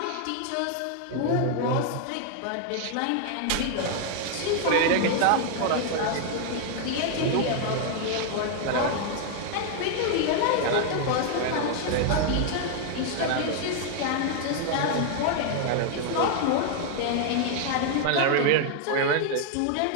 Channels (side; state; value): both; different; correlation 0.00